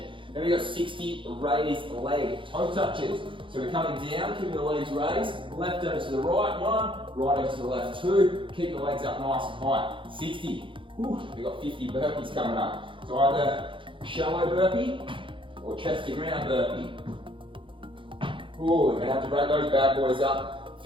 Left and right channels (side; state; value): left; late; 0.25 ms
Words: Then we've got 60 raised leg toe touches. So we're coming down, keeping the legs raised, left over to the right, 1, right over to the left, 2, keep the legs up nice and high, 60. Whew, we've got 50 burpees coming up. So either shallow burpee or chest to ground burpee. Ooh, we're gonna have to break those bad boys up.